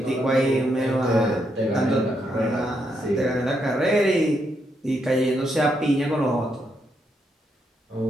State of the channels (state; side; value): normal; both; correlation 0.79